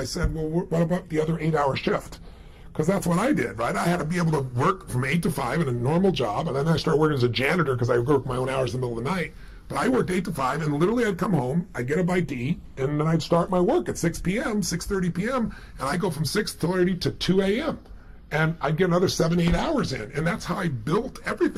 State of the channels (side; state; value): both; identical; correlation 1.00